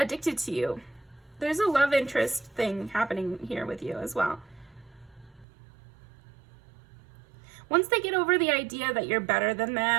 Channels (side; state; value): left; drops out; at 5.5 s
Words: to you. There's a love interest thing happening here with you as well. Once they get over the idea that you're better than